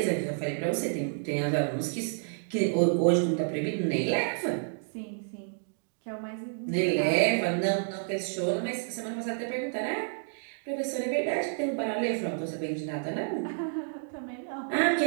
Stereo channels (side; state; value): left; silent; digital silence